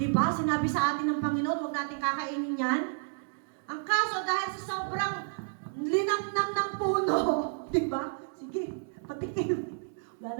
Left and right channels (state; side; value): silent; left; digital silence